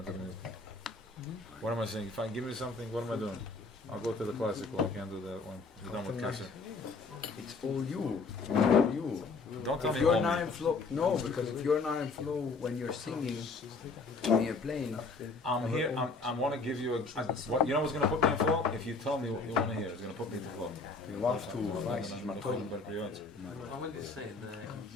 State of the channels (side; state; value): right; quieter; 4.0 dB